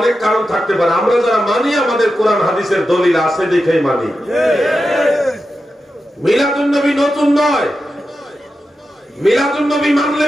কারণ থাকতে পারে। আমরা যারা মানি আমাদের কোরআন হাদিসের দলিল আছে দেখেই মানি। মিলাদুন নবী নতুন নয়, মিলাদুন নবী মানলে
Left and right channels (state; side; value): normal; both; correlation 0.90